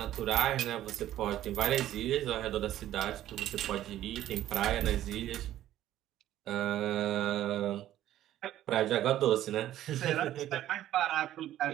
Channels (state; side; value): quieter; left; 12.9 dB